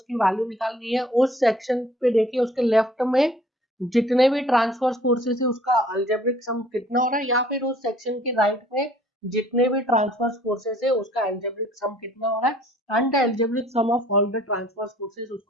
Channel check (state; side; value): normal; both; correlation 0.56